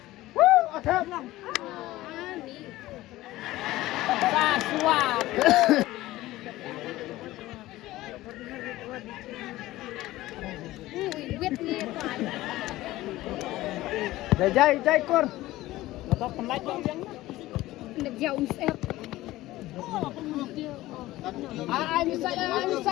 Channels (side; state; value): right; quieter; 16.9 dB